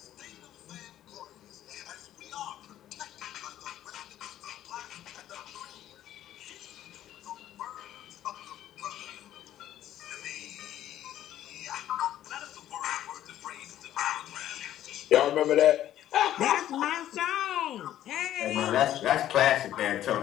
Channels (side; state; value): right; quieter; 12.3 dB